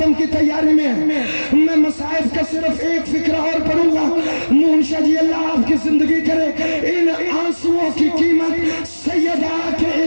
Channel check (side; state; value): both; inverted; correlation -1.00